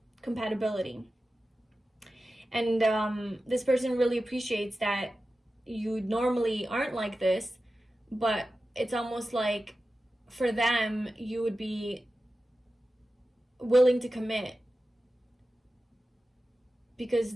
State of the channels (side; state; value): both; normal; correlation 0.93